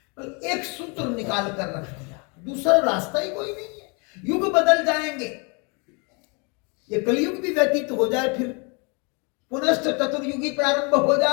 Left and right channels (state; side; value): quieter; right; 32.6 dB